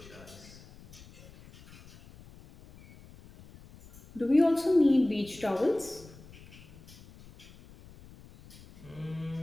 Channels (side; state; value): left; noise; rumble, 21 dB below the sound